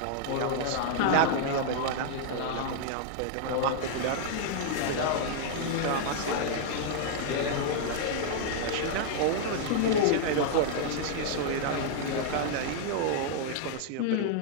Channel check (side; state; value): both; different; correlation -0.01